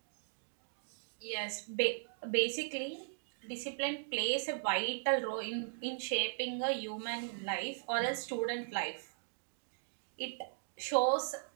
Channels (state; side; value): silent; left; digital silence